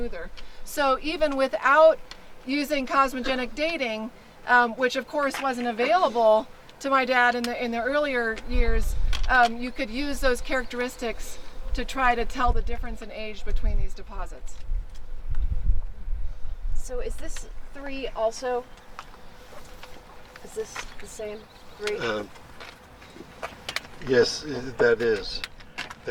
So even without using cosmogenic dating, which of course wasn't available to my dad in the earlier years, you could use those characteristics to try to tell the difference in age between these deposits. So is this 3 also? Is this the same 3? Yes, that is.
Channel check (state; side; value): identical; both; correlation 1.00